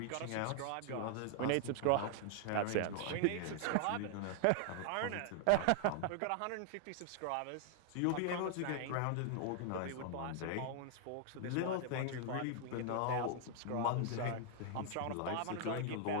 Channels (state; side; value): different; both; correlation 0.00